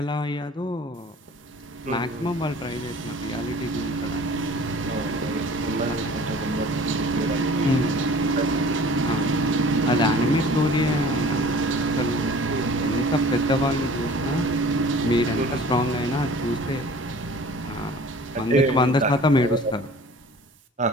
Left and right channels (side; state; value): both; normal; correlation 0.46